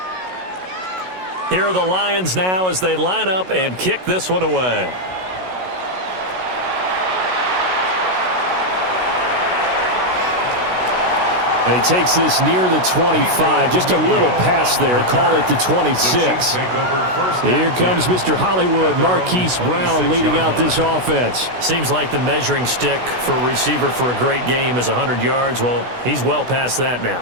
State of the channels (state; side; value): late; left; 16 ms